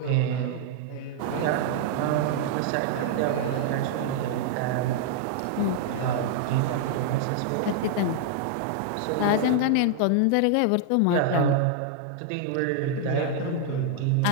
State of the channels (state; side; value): different; both; correlation -0.01